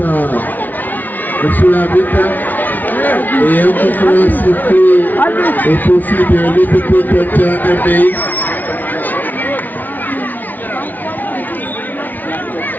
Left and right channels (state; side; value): late; right; 0.082 ms